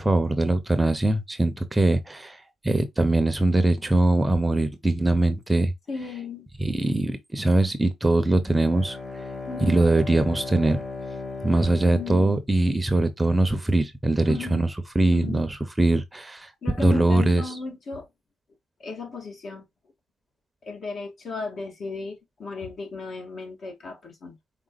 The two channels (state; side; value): normal; both; correlation 0.95